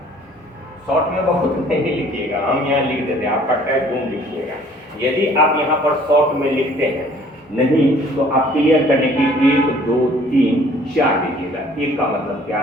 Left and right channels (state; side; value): normal; both; correlation 0.55